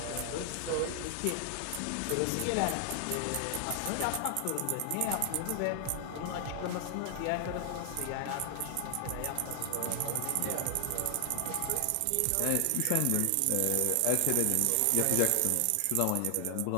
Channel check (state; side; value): different; both; correlation 0.00